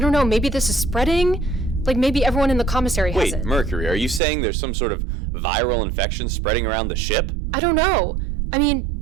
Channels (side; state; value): left; drops out; at 4.2 s